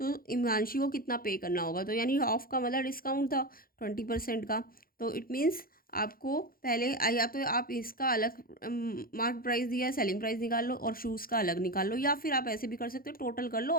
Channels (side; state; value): right; late; 0.42 ms